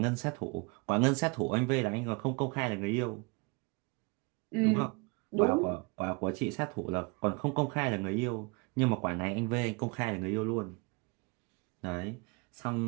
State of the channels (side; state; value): left; quieter; 30.0 dB